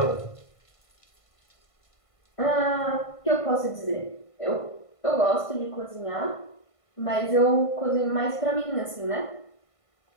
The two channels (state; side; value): late; right; 1.5 ms